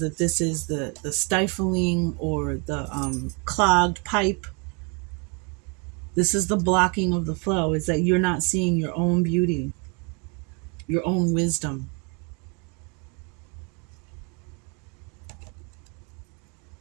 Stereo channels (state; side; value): quieter; left; 33.3 dB